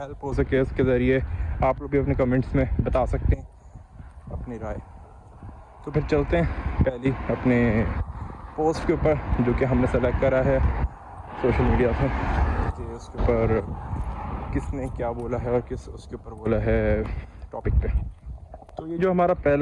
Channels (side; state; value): both; identical; correlation 1.00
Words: हो सके। उसके ज़रिए आप लोग भी अपने कमेंट्स में बता सकते हैं अपनी राय। तो फिर चलते हैं पहली अपने पोस्ट के ऊपर जो कि हमने सेलेक्ट करा है सोशल मीडिया से कि उसके ऊपर किसने क्या बोला है और किस उसके ऊपर बोला है टॉपिक पे। तो ये जो हमारा